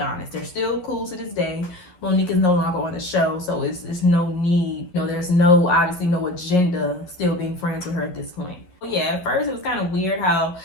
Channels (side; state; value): right; late; 11 ms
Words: They're still cool to this day, Monique is no longer on the show, so it's no need. You know, there's no, obviously no agenda still being friends with her at this point. Yeah, at first it was kind of weird how